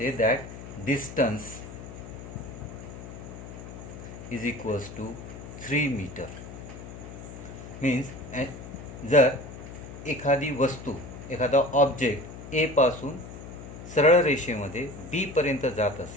that distance is equals to 3 meter. Means जर एखादी वस्तू, एखादा ऑब्जेक्ट ए पासून सरळ रेषेमध्ये बी पर्यंत जात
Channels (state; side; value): noise; left; hum, 12 dB below the sound